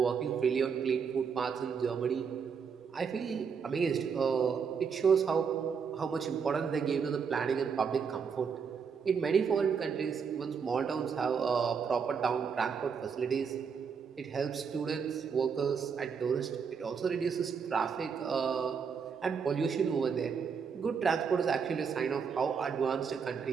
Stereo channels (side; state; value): left; quieter; 6.2 dB